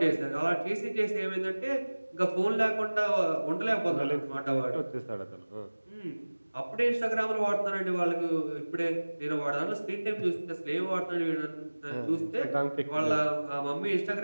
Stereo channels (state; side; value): inverted; both; correlation -1.00